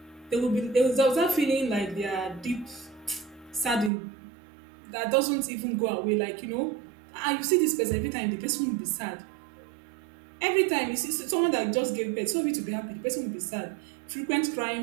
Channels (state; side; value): drops out; left; at 3.9 s